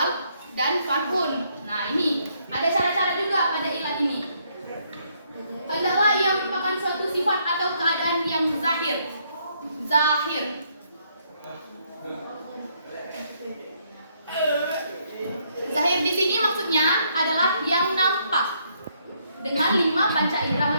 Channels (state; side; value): inverted; both; correlation -0.72